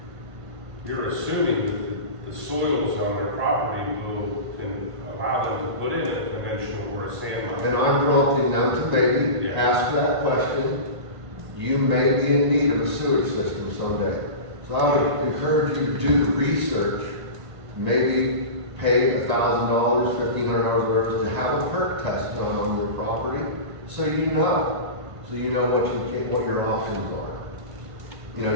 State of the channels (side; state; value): left; late; 1.5 ms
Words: that the soils on their property will allow them to put in a conventional or a sand mine. And I'm prompting them to maybe ask that question. You may be in need of a sewage system someday. So I would encourage you to do the research, maybe pay $1,000, $1,500 worth to have a perk test done on your property, so you know what your options are. You